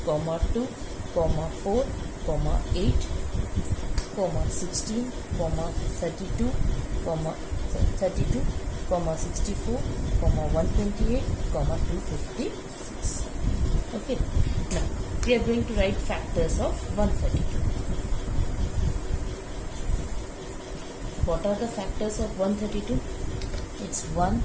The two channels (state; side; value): identical; both; correlation 1.00